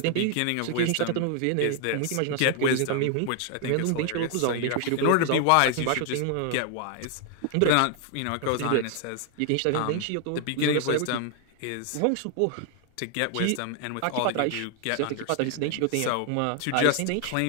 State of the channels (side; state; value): both; different; correlation 0.00